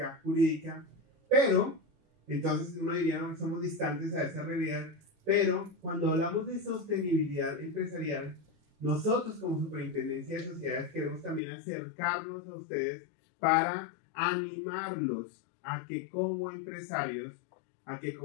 jurídica. Pero, entonces uno diría, no somos distantes a esa realidad, pero cuando hablamos de sostenibilidad empresarial, nosotros como Superintendencia de Sociedades queremos también acercarnos a ustedes para animarlos a que como empresarios, a que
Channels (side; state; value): right; drops out; at 11.4 s